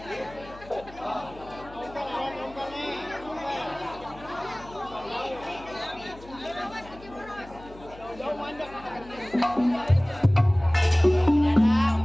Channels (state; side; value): noise; left; hum, 19 dB below the sound